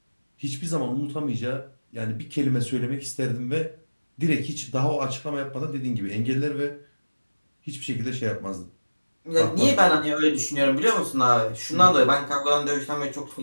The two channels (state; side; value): inverted; both; correlation -1.00